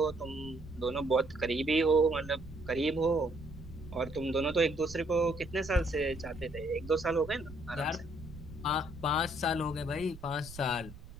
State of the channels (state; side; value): noise; right; rumble, 16 dB below the sound